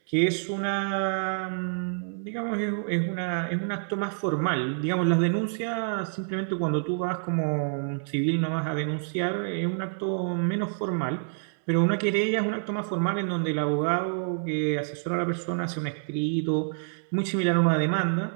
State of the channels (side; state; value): left; silent; digital silence